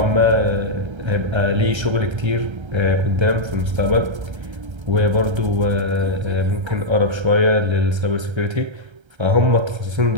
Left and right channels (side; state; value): left; late; 1.3 ms